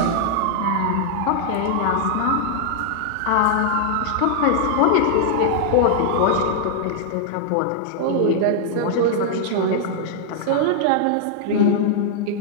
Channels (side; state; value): both; different; correlation -0.01